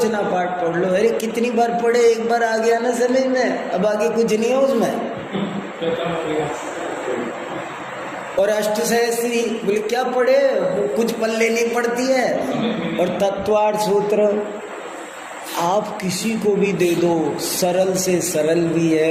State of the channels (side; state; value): both; identical; correlation 1.00